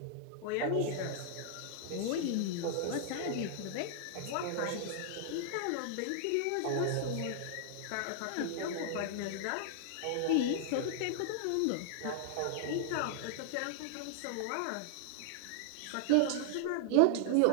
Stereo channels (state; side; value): different; both; correlation -0.01